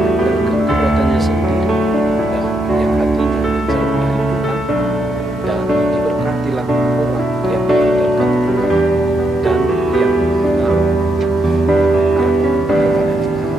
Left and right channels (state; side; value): normal; both; correlation 0.80